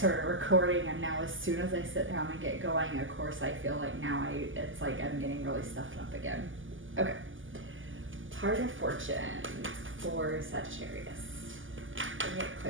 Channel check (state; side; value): late; left; 0.58 ms